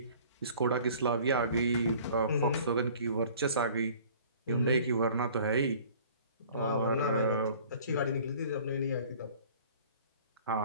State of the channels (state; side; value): inverted; both; correlation -0.49